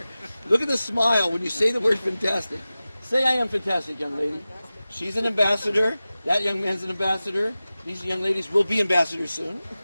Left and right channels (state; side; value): inverted; both; correlation -0.96